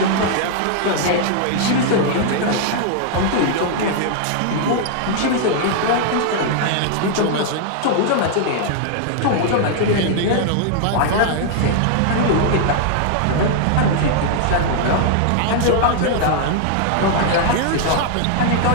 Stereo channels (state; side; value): different; both; correlation 0.00